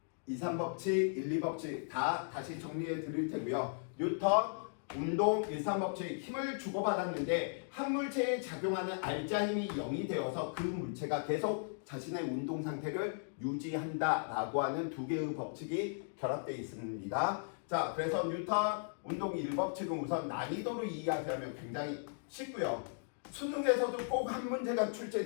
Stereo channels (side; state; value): right; silent; digital silence